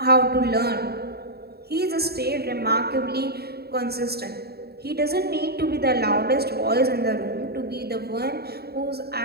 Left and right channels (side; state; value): left; late; 0.46 ms